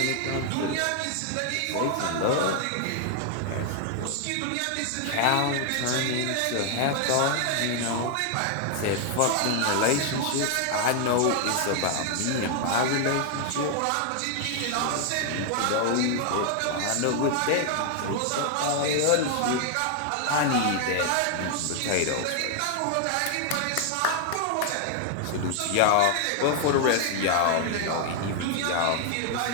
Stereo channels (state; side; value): different; both; correlation 0.00